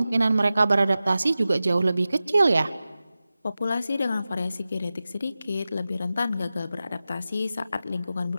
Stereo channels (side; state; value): both; inverted; correlation -0.94